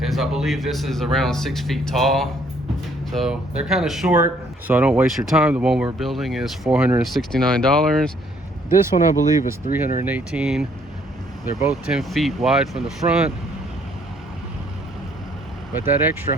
is I believe this is around 6 feet tall. So they're kind of short, so I don't waste your time. The one we're building is $469. This one I believe is $318. They're both 10 feet wide from the front, but that extra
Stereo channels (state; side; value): normal; both; correlation 0.64